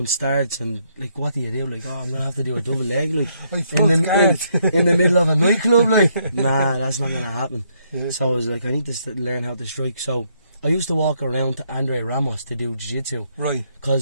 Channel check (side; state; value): both; inverted; correlation -0.73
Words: starts and, like, what do you do? Like, I'm going to have to do a double leg, like, in the middle of a nightclub, like. Nah, that's not going to happen. So I was like, I need to learn how to strike. So I used to walk around to Andre Ramos to do jiu-jitsu. Right.